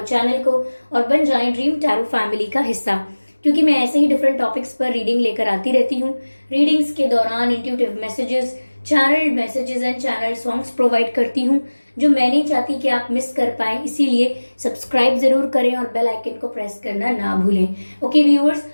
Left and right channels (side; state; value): both; inverted; correlation -1.00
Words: चैनल को और बन जाएं ड्रीम टैरो फैमिली का हिस्सा, क्योंकि मैं ऐसे ही डिफरेंट टॉपिक्स पर रीडिंग लेकर आती रहती हूँ। रीडिंग्स के दौरान intuitive messages, channel messages and channel songs provide करती हूँ, जो मैं नहीं चाहती कि आप मिस कर पाए। इसीलिए सब्सक्राइब जरूर करें और बेल आइकन को प्रेस करना ना भूलें। ओके व्यूअर्स,